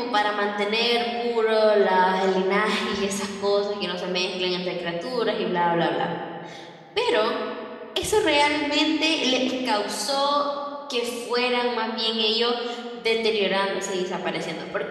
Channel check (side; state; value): both; identical; correlation 1.00